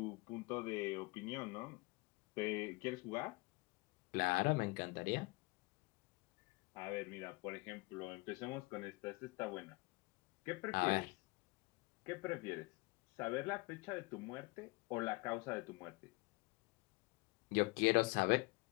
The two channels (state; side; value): quieter; right; 25.6 dB